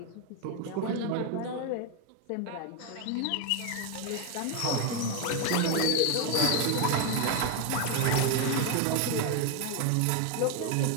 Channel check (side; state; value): both; different; correlation 0.01